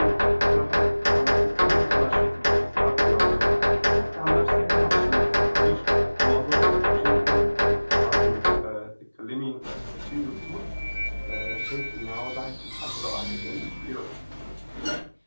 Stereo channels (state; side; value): inverted; both; correlation -1.00